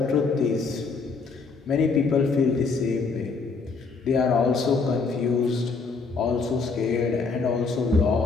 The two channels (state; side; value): quieter; right; 4.5 dB